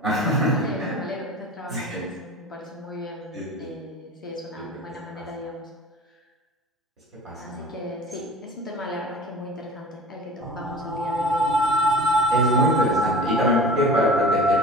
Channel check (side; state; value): both; normal; correlation 0.40